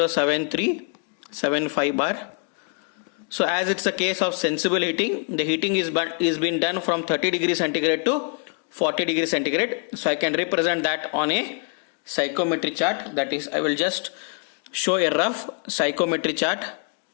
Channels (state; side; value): quieter; right; 39.1 dB